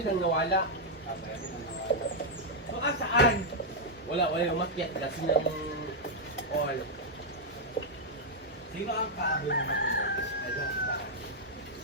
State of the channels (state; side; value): normal; both; correlation -0.04